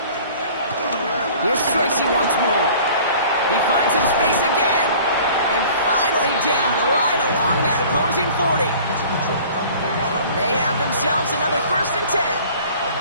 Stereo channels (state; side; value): inverted; both; correlation -0.47